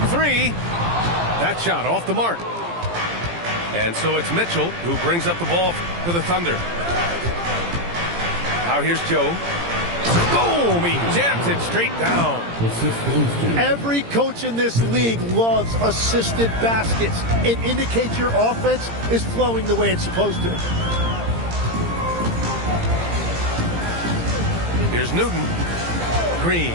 3. That shot off the mark. And so it's Mitchell who brings up the ball for the Thunder. Now here's Joe. Boom! He jams it straight down. Every coach in this league loves assisted baskets. It indicates your offense is flowing the way it's supposed to. Here's Newton. Green,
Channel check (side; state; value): left; late; 17 ms